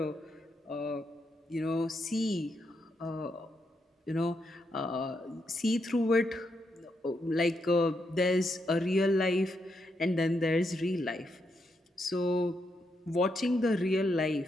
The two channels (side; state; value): both; normal; correlation 0.81